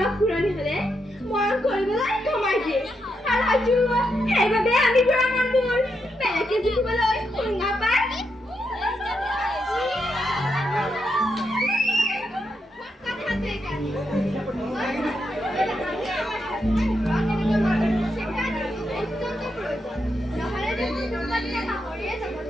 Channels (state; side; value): normal; both; correlation 0.82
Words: ঘূৰণি হলে মৰম কৰিবলৈ কমাই দিয়ে আৰু হয়তো সেইবাবে আমি বুঢ়া মানুহবোৰ বেলেগে জিকিবলৈ শুঙা পায়